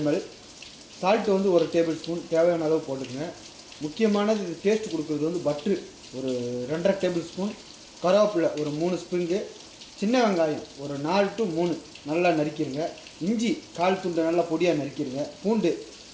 ml. சால்ட்டு வந்து 1 டேபிள் ஸ்பூன் தேவையான அளவு போட்டுக்கோங்க. முக்கியமானது இது டேஸ்ட் கொடுக்குறது வந்து பட்ரு ஒரு 2.5 டேபிள் ஸ்பூன், கருவேப்பிலை ஒரு 3 ஸ்ப்ரிங்கு, சின்ன வெங்காயம் ஒரு 4 to 3 நல்லா நறுக்கிடுங்க. இஞ்சி 1/4 துண்டு நல்லா பொடியாக நறுக்கிடுங்க. பூண்டு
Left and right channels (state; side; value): identical; both; correlation 1.00